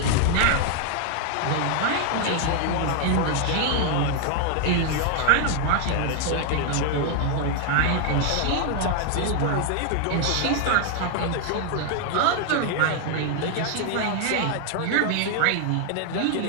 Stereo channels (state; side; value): different; both; correlation 0.00